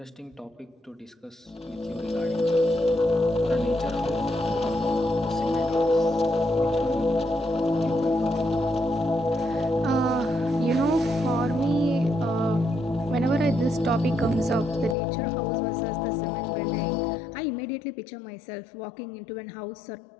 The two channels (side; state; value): right; drops out; at 15.0 s